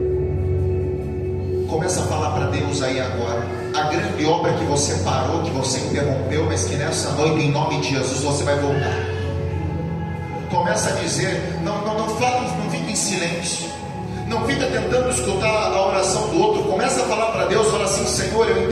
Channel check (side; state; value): both; identical; correlation 1.00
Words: Começa a falar para Deus aí agora. A grande obra que você parou, que você interrompeu, mas que nessa noite, em nome de Jesus, você vai voltar. Começa a dizer, não fala, não fique em silêncio. Não fica tentando escutar a oração do outro. Começa a falar para Deus, fala assim: Senhor, eu